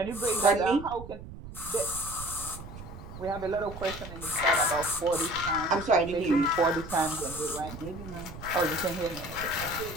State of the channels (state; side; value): noise; right; rumble, 13 dB below the sound